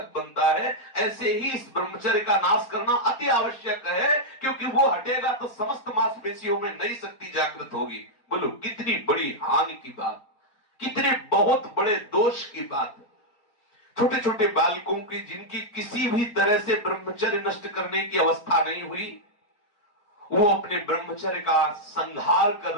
बनता है, ऐसे ही इस ब्रह्मचर्य का नाश करना अति आवश्यक है, क्योंकि वो हटेगा तो समस्त मांसपेशियों में नई शक्ति जागृत होगी। बोलो कितनी बड़ी हानि की बात, कितने बहुत बड़े दोष की बात। छोटे छोटे बालकों की, जिनकी किसी भी तरह से ब्रह्मचर्य नष्ट करने की अवस्था नहीं हुई, वो अपने ब्रह्मचर्य का संहार कर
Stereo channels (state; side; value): late; right; 4.3 ms